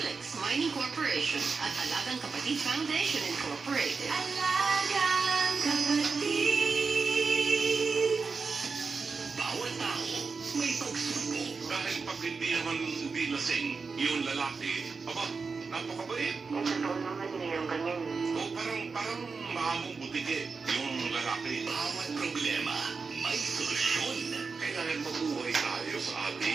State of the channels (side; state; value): left; quieter; 4.8 dB